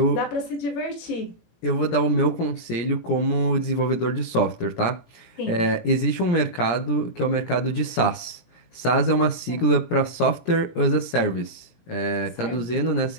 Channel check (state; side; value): late; right; 17 ms